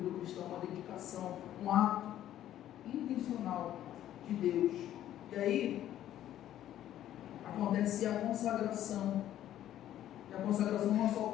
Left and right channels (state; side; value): quieter; right; 12.1 dB